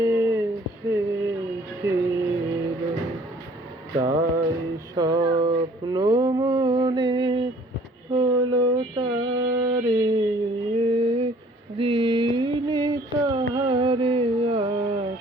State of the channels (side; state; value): both; normal; correlation 0.55